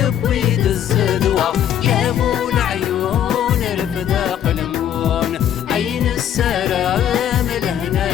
الزدوة يا ابو العيون رفداق المون عين السلام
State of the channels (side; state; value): right; quieter; 10.0 dB